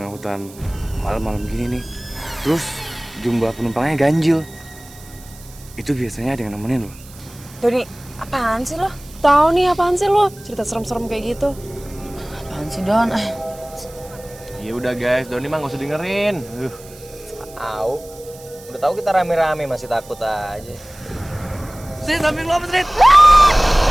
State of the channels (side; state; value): right; noise; hiss, 21 dB below the sound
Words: hutan malam-malam gini nih, terus jumlah penumpangnya ganjil, itu biasanya ada yang nemenin loh. Doni, apaan sih lo? Tahu nih apaan sih lo? Cerita serem-serem kayak gitu. Apaan sih, Don? Ya udah guys, Doni mah nggak usah dengerin. Au. Udah tahu kita rame-rame masih takut aja. Sini samping lo apa, Srit?